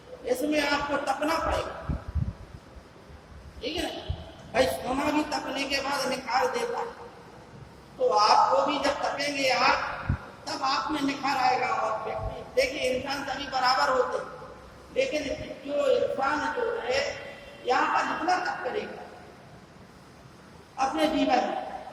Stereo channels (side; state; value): both; identical; correlation 1.00